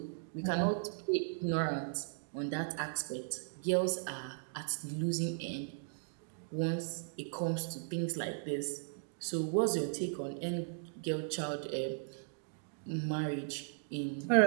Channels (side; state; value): left; silent; digital silence